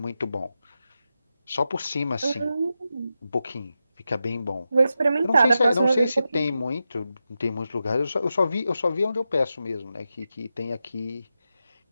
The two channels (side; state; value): both; inverted; correlation -0.90